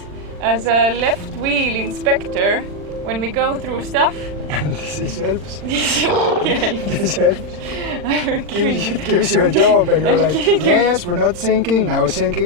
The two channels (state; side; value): late; left; 40 ms